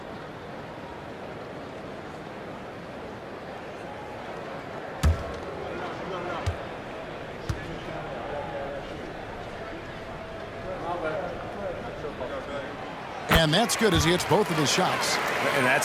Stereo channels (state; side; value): identical; both; correlation 1.00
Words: And that's good as he hits both of his shots. And